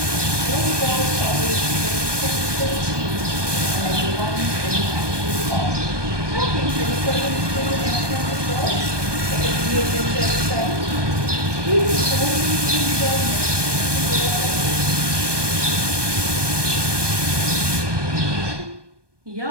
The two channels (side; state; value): left; late; 1.2 ms